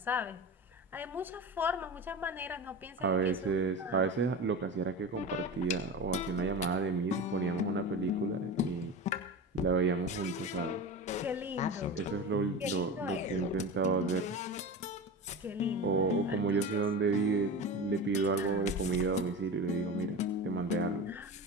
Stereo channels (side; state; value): both; normal; correlation 0.28